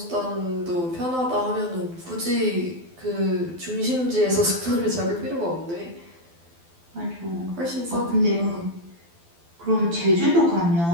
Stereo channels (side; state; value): left; late; 12 ms